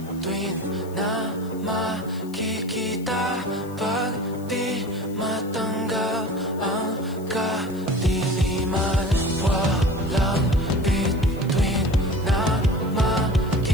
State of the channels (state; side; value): noise; left; hiss, 23 dB below the sound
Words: na makikita pag di matanggap ang kadiliman. Walang bituin na